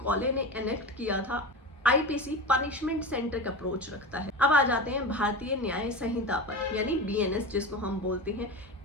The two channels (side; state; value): both; normal; correlation 0.26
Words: ने एनेक्ट किया था। आईपीसी पनिशमेंट सेंट्रिक अप्रोच रखता है। अब आ जाते हैं भारतीय न्याय संहिता पर, यानी बीएनएस जिसको हम बोलते हैं।